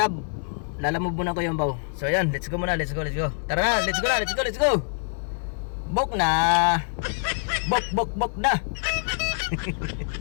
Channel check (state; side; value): silent; right; digital silence